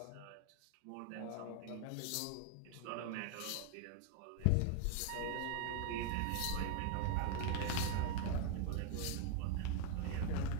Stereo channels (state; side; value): different; both; correlation 0.01